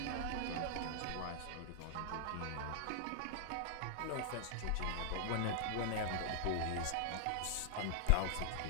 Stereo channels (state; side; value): different; both; correlation 0.00